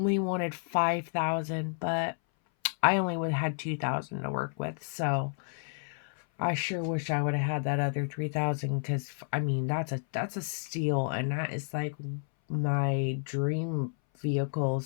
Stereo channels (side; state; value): right; silent; 57 dB below the other